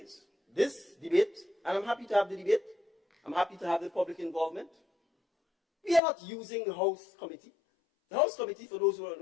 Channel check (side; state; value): right; drops out; at 6.0 s